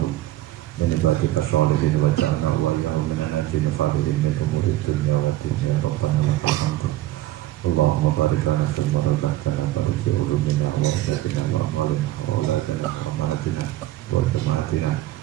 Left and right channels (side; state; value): left; quieter; 15.3 dB